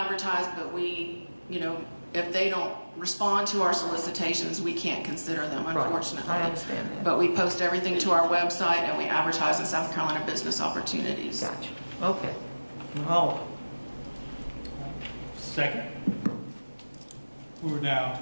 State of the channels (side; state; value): both; inverted; correlation -1.00